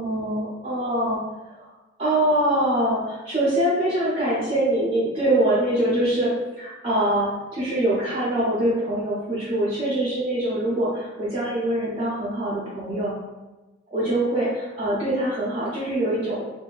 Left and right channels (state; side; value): normal; both; correlation 0.32